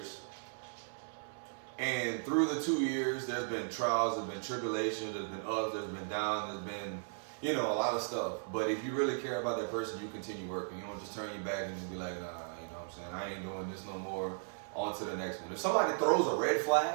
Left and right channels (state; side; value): silent; left; 53 dB below the other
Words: And through the 2 years, there's been trials, there's been tribulations, there's been ups, there's been downs, there's been, a lot of stuff. But if you really care about that person, you continue working. You don't just turn your back and just be like, nah, you know what I'm saying? I ain't doing this no more. On to the next one. If somebody throws a red